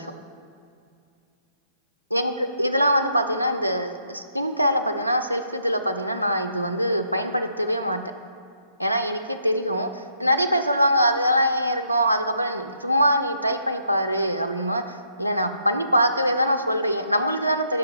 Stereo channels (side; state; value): both; inverted; correlation -0.74